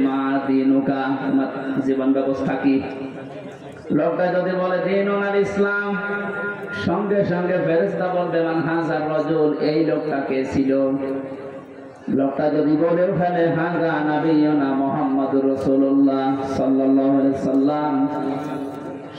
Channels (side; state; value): both; identical; correlation 1.00